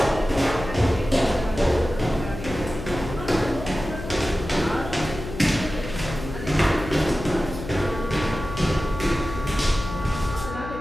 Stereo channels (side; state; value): left; noise; hum, 10 dB below the sound